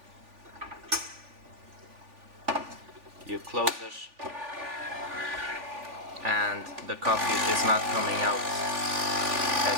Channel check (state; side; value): late; left; 3.5 ms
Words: you close it and the coffee is not coming out